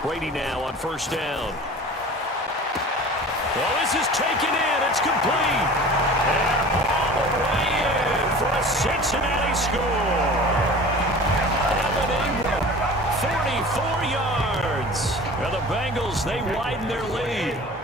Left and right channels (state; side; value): normal; both; correlation 0.40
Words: Brady now on 1st down. Well, this is taken in. It's complete. And all the way in for a Cincinnati score. Evan Ingram, 44 yards. Now the Bengals, they widen their lead.